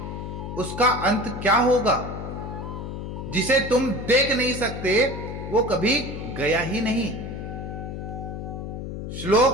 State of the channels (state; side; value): noise; left; hum, 7 dB below the sound